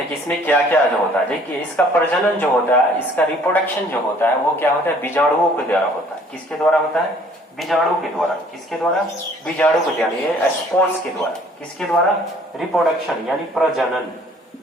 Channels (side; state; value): both; normal; correlation 0.57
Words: कि इसमें क्या क्या जो होता है। देखिए इसका प्रजनन जो होता है, इसका रिप्रोडक्शन जो होता है, वो क्या होता है? बीजाणुओं के द्वारा होता है। किसके द्वारा होता है? बीजाणु के द्वारा। किसके द्वारा? बीजाणु के द्वारा, ये स्पोर्स के द्वारा। किसके द्वारा? रिप्रोडक्शन यानी प्रजनन।